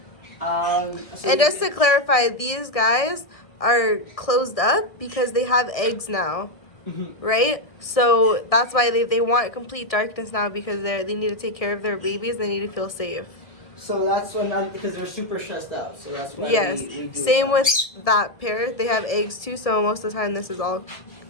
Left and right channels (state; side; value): late; right; 1.6 ms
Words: And just to clarify, these guys are closed up because they have eggs now. Right? So that's why they want complete darkness now, because they need to take care of their babies. They need to feel safe. So that's because they're super stressed out. So that's why we do Same with that pair. They have eggs too, so most of the time this is